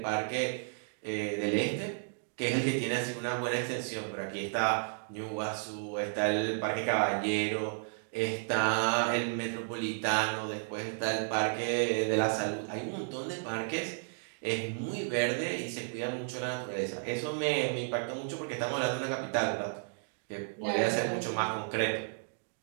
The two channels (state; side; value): silent; left; digital silence